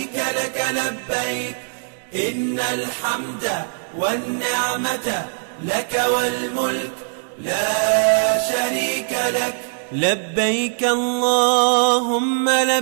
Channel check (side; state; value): left; silent; digital silence